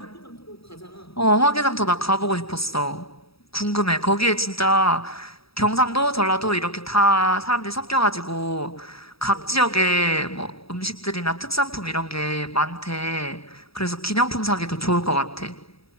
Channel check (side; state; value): right; late; 0.77 ms